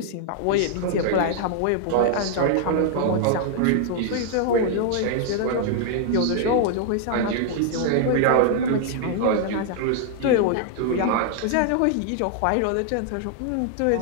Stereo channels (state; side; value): different; both; correlation 0.00